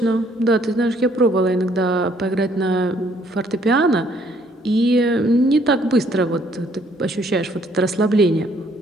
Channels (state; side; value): normal; both; correlation 0.65